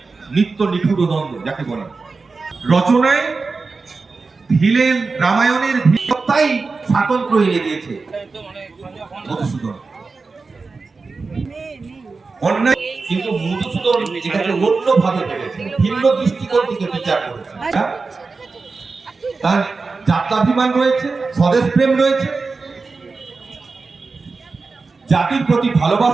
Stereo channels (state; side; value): quieter; left; 4.2 dB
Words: নিত্য নিঠুর দ্বন্দ্ব যাকে বলে। রচনায় ভিলেন রামায়ণের ভিত্তাই স্বাতন্ত্র এনে দিয়েছে মধুসূদন। অন্যায় কিন্তু মধুসূদন এটাকে অন্যভাবে ভেবেছে, ভিন্ন দৃষ্টিকোণ থেকে বিচার করেছে। তার জাত্যাভিমান রয়েছে, স্বদেশ প্রেম রয়েছে, জাতির প্রতি